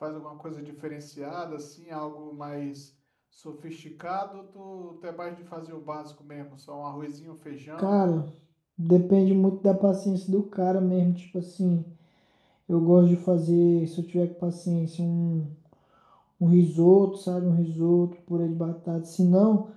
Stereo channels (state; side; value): identical; both; correlation 1.00